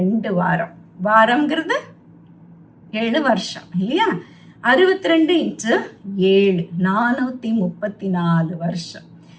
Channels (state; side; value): identical; both; correlation 1.00